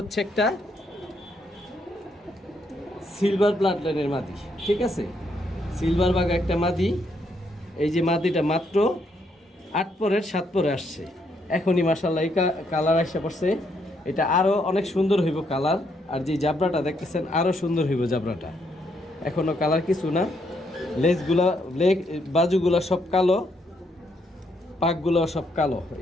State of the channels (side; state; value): both; normal; correlation 0.74